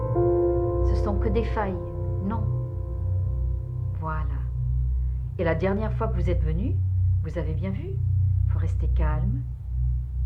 Ce sont que des failles. Non. Voilà. Et la dernière fois que vous êtes venu, vous avez bien vu, il faut rester calme.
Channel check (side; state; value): both; identical; correlation 1.00